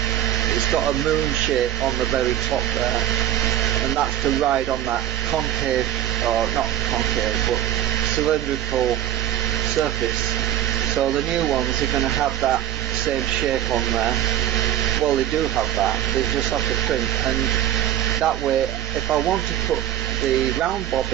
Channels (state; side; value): quieter; left; 11.9 dB